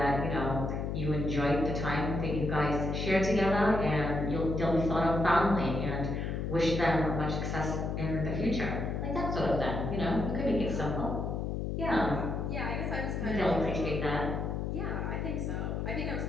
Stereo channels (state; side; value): noise; left; hum, 2 dB below the sound